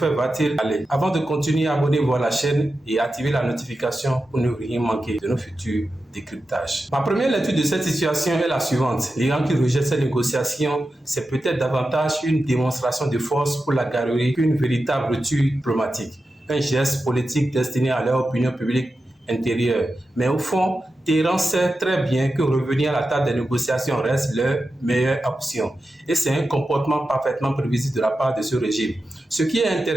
va-t-il aller? Avant de continuer, abonnez-vous à la chaîne et activez la notification pour ne rien manquer de nos futurs décryptages. Ma première lecture de cette situation est la suivante. L'Iran qui rejette ces négociations, c'est peut-être davantage une démonstration de force pour la galerie qu'une véritable rupture diplomatique. Un geste politique destiné à leur opinion publique intérieure. Mais au fond, Téhéran sait très bien que revenir à la table des négociations reste leur meilleure option. Et c'est un comportement parfaitement prévisible de la part de ce régime. Ce qui est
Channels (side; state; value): both; normal; correlation 0.91